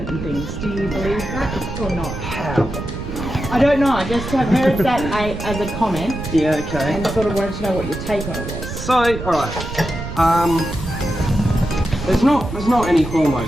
and things? Do you believe that or not? How? I don't know. I just have heard that as a comment. Yeah, okay. And sort of wanted to know what your take on it was. So, alright. There's not any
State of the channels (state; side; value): noise; right; rumble, 8 dB below the sound